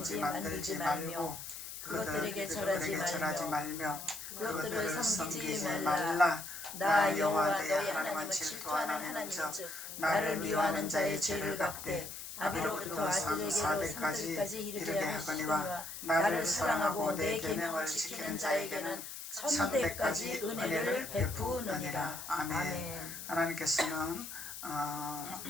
만들지 말며 그것들에게 절하지 말며 그것들을 섬기지 말라. 나 여호와 너희 하나님은 질투하는 하나님인즉 나를 미워하는 자의 죄를 갚되 아비로부터 아들에게로 산들까지 이르게 하거니와 나를 사랑하고 내 계명을 지키는 자에게는 천대까지 은혜를 베푸느니라. 아멘. 하나님께서는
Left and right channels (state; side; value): noise; left; hiss, 9 dB below the sound